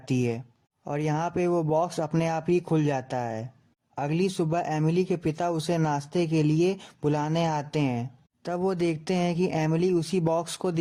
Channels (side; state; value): both; identical; correlation 1.00